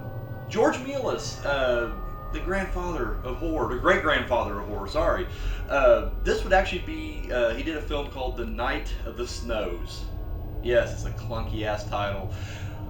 George Melas, the grandfather of horror, the great grandfather of horror, sorry. This would actually be, he did a film called The Night of the Snows. Yes, it's a clunky ass title.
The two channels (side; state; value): both; identical; correlation 1.00